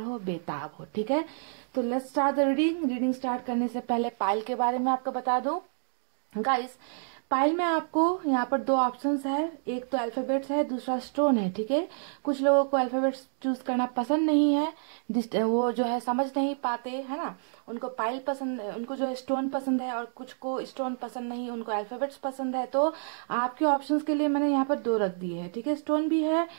बेताब हो, ठीक है। तो let's start the reading start करने से पहले पाइल के बारे में आपको बता दूं गाइस। पाइल में आपको यहाँ पर दो ऑप्शंस है, एक तो अल्फाबेट्स है, दूसरा स्टोन है, ठीक है। कुछ लोगों को अल्फाबेट्स चूज करना पसंद नहीं है, वो जो है समझ नहीं पाते है ना, उनको पाइल पसंद, उनको जो है स्टोन पसंद है, और कुछ को स्टोन पसंद नहीं, उनको अल्फाबेट्स पसंद है। तो आपके ऑप्शंस के लिए मैंने यहाँ पर दो रख दिए है, ठीक है। स्टोन भी है,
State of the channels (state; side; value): silent; left; digital silence